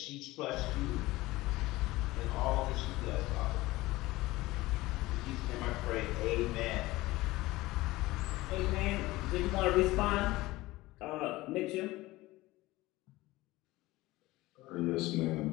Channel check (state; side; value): quieter; right; 19.0 dB